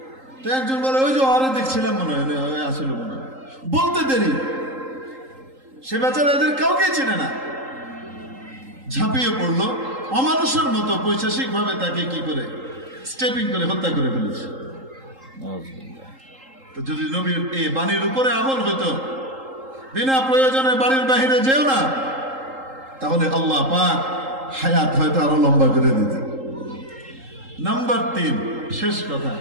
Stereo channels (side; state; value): left; late; 3.8 ms